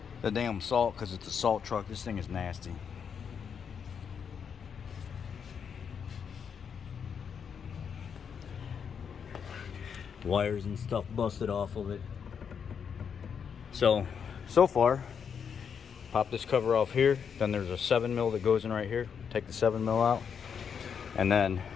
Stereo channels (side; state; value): right; quieter; 7.0 dB